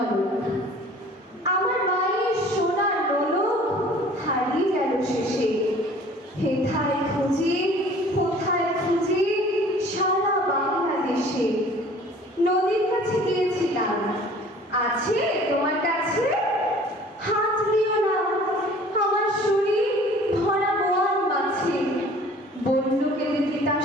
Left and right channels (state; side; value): normal; both; correlation 0.49